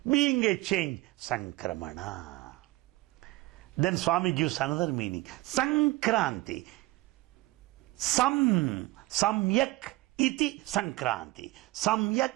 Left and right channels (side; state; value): left; quieter; 19.8 dB